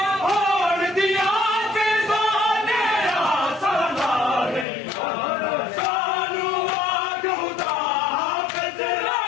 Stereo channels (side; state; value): right; drops out; at 4.7 s